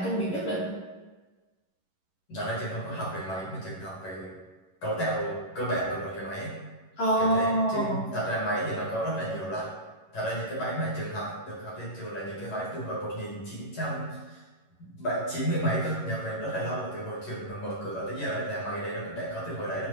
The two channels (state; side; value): late; right; 11 ms